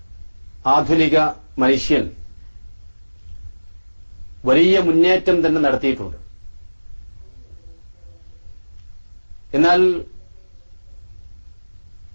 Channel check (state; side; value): inverted; both; correlation -1.00